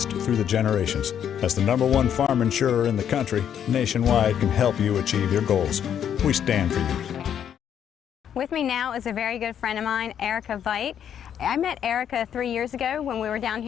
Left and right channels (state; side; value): quieter; right; 9.1 dB